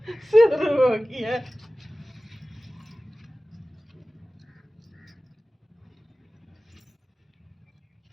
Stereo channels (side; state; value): both; normal; correlation 0.97